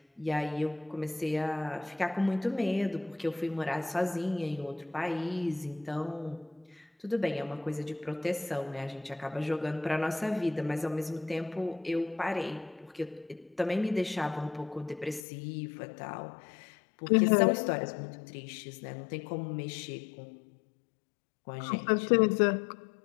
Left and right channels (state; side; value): drops out; right; at 15.2 s